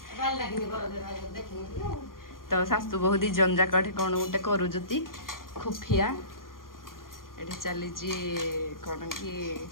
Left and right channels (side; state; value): right; late; 0.91 ms